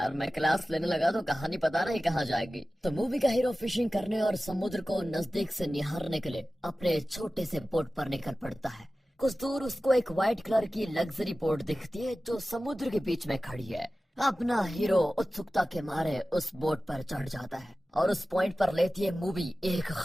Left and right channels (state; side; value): normal; both; correlation 0.96